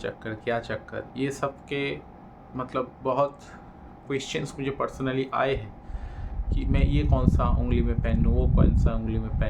क्या चक्कर, ये सब के मतलब बहुत क्वेश्चंस मुझे पर्सनली आए हैं कि मैं ये कौन सा उंगली में पहनूँ, वो कौन सा उंगली में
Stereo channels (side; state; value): both; identical; correlation 1.00